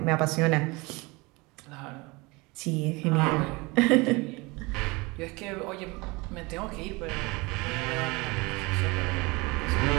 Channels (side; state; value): left; quieter; 25.1 dB